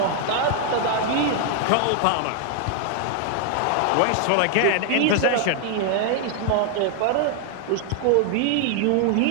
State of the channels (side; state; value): both; different; correlation 0.00